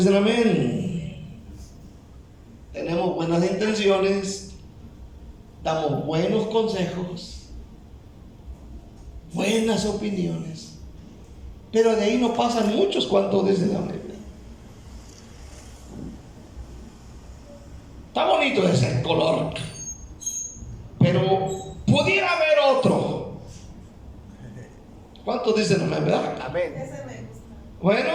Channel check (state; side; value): identical; both; correlation 1.00